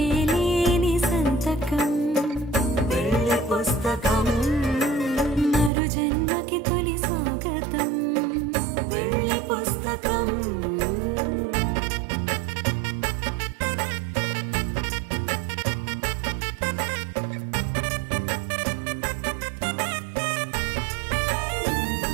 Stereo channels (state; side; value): drops out; left; at 5.7 s